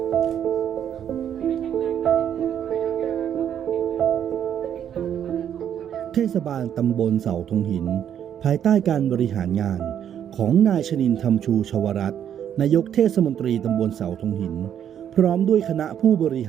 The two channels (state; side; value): quieter; left; 9.4 dB